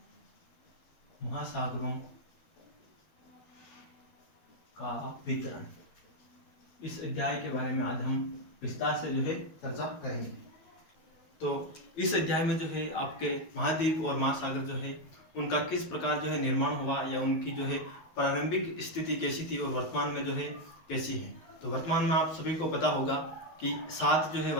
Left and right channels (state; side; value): late; right; 12 ms